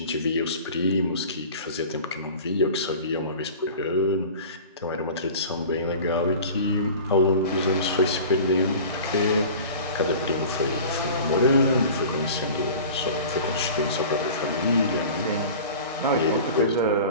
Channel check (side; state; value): both; inverted; correlation -0.39